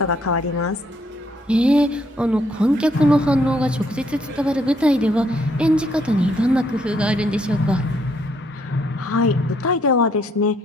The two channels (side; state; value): both; normal; correlation 0.70